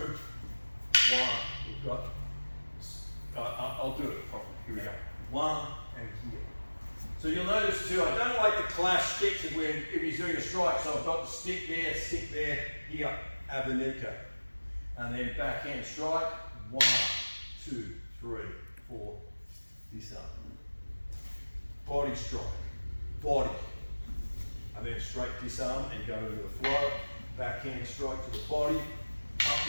one, we've got, I'll do it properly, here we go. One and here. So you'll notice too, I don't like to clash sticks if he's doing a strike, so I've got the stick there, here, Abanico. And then backhand strike, 1, 2, 3, 4, this up. Body strike, body. And then straight disarm and go into the flow. Backhand strike to the body,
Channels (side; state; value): both; inverted; correlation -1.00